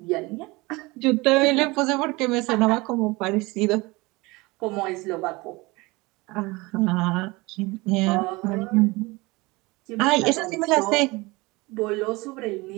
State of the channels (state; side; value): quieter; left; 23.5 dB